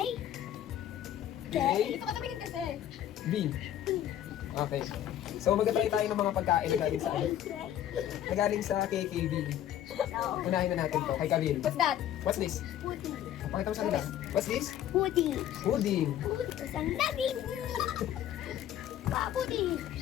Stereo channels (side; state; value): right; quieter; 11.3 dB